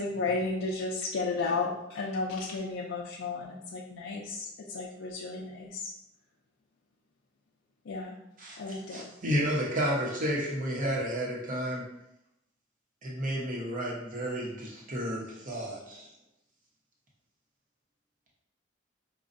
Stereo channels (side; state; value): both; normal; correlation 0.27